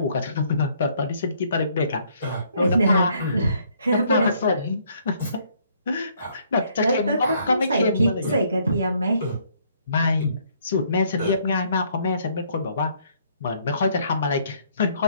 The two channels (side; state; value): both; inverted; correlation -0.66